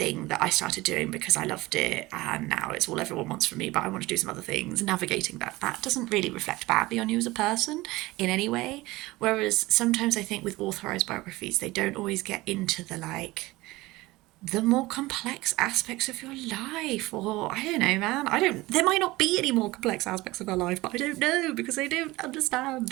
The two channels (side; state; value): left; quieter; 19.9 dB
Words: that I started doing because I loved it and now it's all everyone wants from me, but I want to do some other things. Navigating that doesn't really reflect badly on you as a person in any way. Whereas sometimes I think with authorized biographies, they don't always get into the more complex aspects of your life, or I don't know, man. There might not be any more complex aspects of our life, but I don't know because I don't